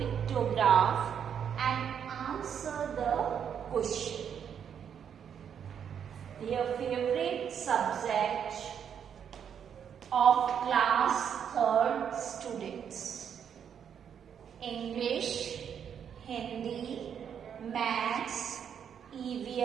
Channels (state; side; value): quieter; left; 8.1 dB